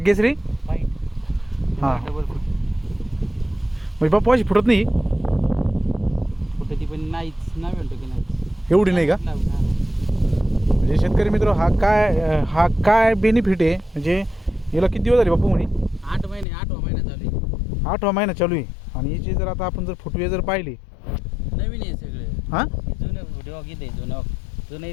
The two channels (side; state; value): right; drops out; at 16.4 s